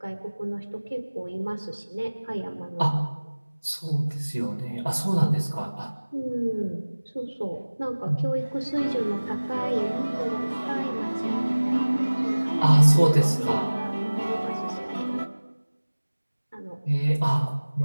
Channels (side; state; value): both; inverted; correlation -1.00